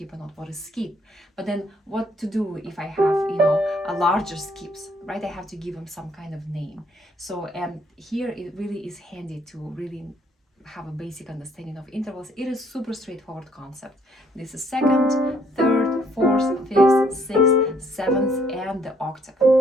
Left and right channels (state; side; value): normal; both; correlation 0.66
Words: or not, what is skip. But then what to do if I have, a larger skips, right? I have to give them some kind of name. So, and here it really is handy to really have a basic understanding of intervals. It is super straightforward concept. This is second, third, fourth, fifth, sixth, seventh, and the octave.